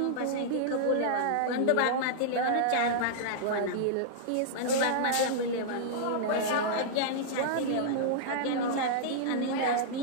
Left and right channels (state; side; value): different; both; correlation -0.02